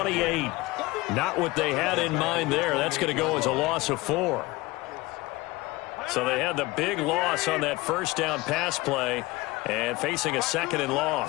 Not what they had in mind there. That's going to go as a loss of 4. So they had the big loss on that first down pass play and facing a 2nd and long.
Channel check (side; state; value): right; quieter; 21.3 dB